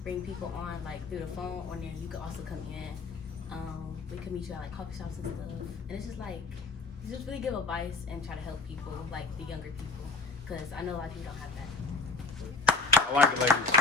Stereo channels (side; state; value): right; quieter; 3.6 dB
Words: bring people on through the phone, or then you could also come in. We could meet you at coffee shops and stuff, and it's just really give advice and try to help people, the younger people, because I know a lot of people don't have that. I like it, ladies.